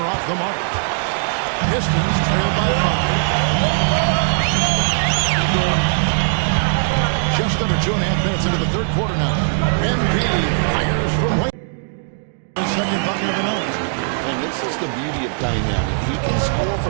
the mark. Pistons trailed by 5. Just under 2.5 minutes into the third quarter now. MP fires from way. The second bucket of the night. And this is the beauty of Cunningham. He can score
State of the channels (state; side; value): silent; left; digital silence